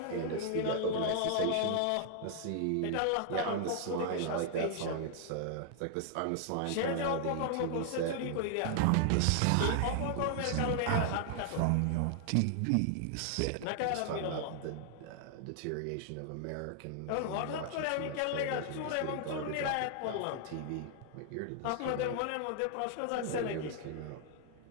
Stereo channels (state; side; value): different; both; correlation 0.00